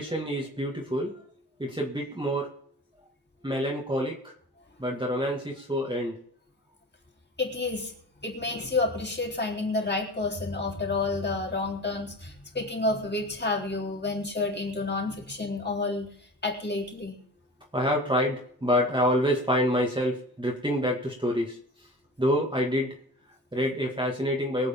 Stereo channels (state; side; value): normal; both; correlation 0.36